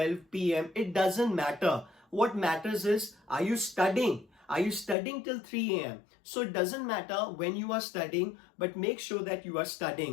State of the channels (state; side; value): drops out; right; at 5.0 s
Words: p.m., it doesn't matter. What matters is, are you studying? Are you studying till 3 a.m.? So it doesn't matter when you are studying, but make sure that you are